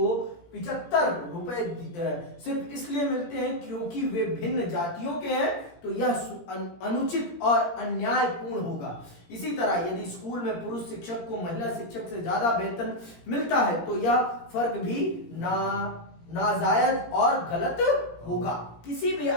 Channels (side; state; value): right; late; 17 ms